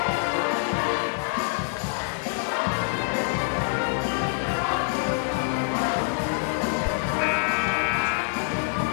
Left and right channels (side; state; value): right; silent; 56 dB below the other